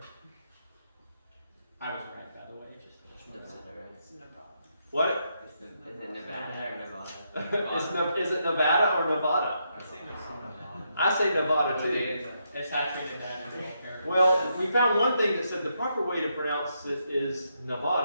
I was right, by the way. It's Nevada. What? Is it Nevada or Nevada? Is it Nevada or Nevada? I say Nevada. I say Nevada too. It's actually in that area. Well, we found one thing that said the proper way to pronounce it is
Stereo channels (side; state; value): both; inverted; correlation -0.79